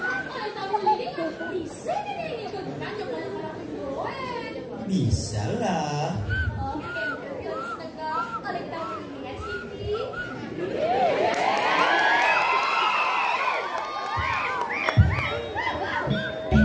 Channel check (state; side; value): identical; both; correlation 1.00